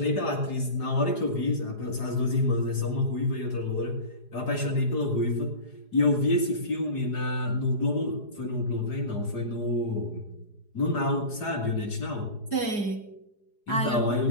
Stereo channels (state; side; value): late; right; 4.8 ms